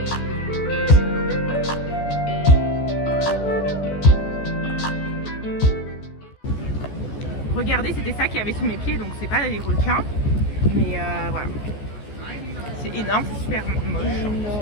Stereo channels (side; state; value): right; late; 14 ms